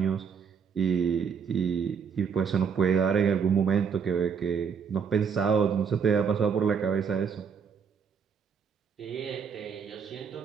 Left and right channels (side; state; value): left; quieter; 6.5 dB